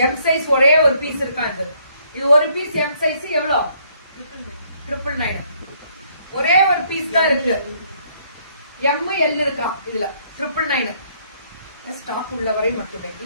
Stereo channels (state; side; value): inverted; both; correlation -0.67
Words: M size ஒரே ஒரு பீஸ் இருக்கா? இது ஒரு பீஸ் எம் சைஸ் எவ்வளோ? 999. ஒரே ஒரு பீஸ் தான் இருக்கு. எம் எல் இருக்கா இதுல? 999 ஸ்டாக் உள்ளவரை மட்டுமே,